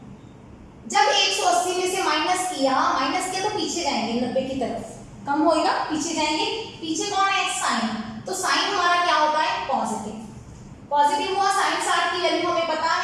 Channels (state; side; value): identical; both; correlation 1.00